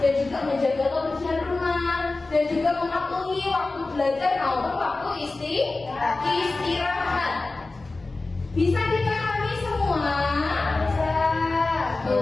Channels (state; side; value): quieter; right; 3.4 dB